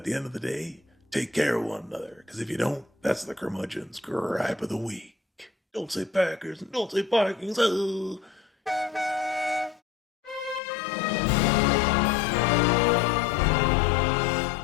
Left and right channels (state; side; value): drops out; right; at 10.6 s